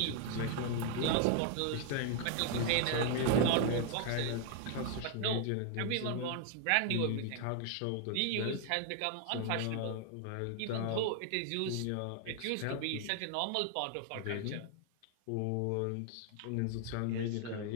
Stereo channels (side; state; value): both; different; correlation 0.00